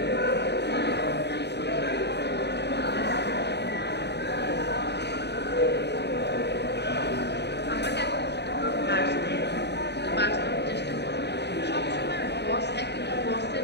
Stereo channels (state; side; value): late; right; 0.49 ms